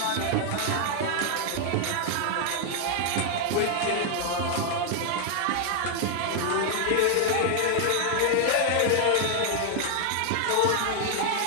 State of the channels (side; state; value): both; different; correlation 0.00